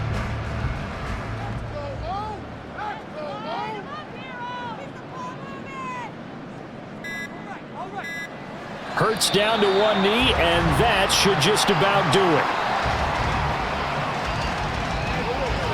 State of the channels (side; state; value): both; identical; correlation 1.00